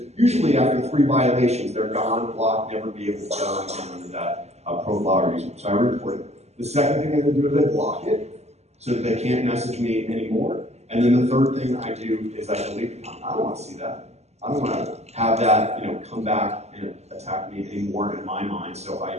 usually after 3 violations, they're gone, blocked, never be able to get on again under that profile or user. So I report it. The second thing I do is I block it so that they can't message me anymore. And then the third thing I do is I delete the account. I don't want to see that. I don't want to have that come back and attack me anymore in my mind. So I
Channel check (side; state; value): left; late; 0.32 ms